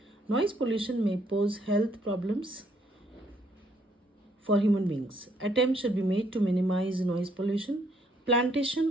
Noise pollution may pose health problems for human beings. Attempts should be made to minimize noise pollution.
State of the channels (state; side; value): normal; both; correlation 0.69